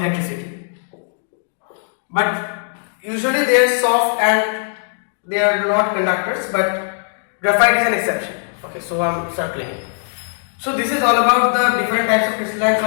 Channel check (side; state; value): right; silent; 66 dB below the other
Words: But usually they are soft and they are not conductors, but graphite is an exception. Okay, so I'm circling it. So this is all about the different types of crystalline